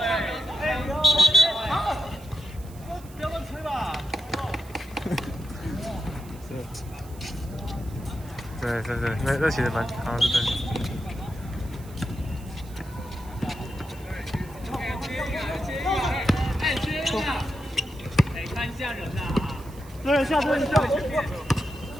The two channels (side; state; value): right; noise; hiss, 22 dB below the sound